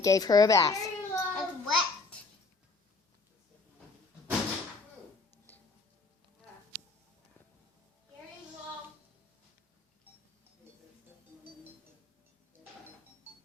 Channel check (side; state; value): right; quieter; 3.9 dB